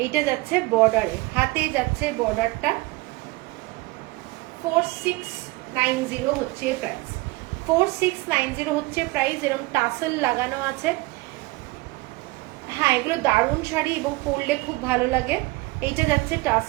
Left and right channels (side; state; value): left; quieter; 22.1 dB